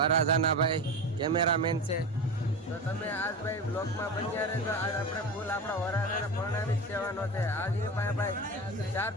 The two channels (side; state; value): both; normal; correlation 0.25